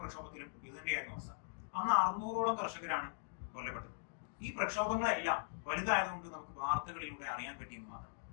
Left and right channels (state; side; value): silent; right; digital silence